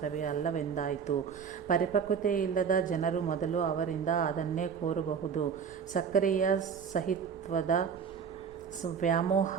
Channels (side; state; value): left; quieter; 6.7 dB